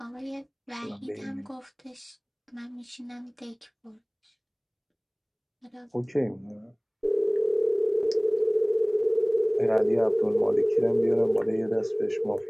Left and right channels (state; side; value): identical; both; correlation 1.00